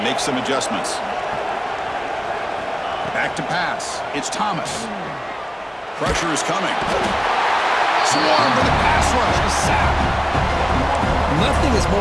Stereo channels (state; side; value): identical; both; correlation 1.00